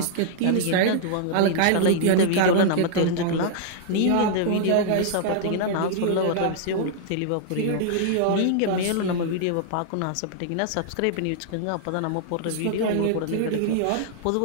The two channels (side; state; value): both; different; correlation -0.01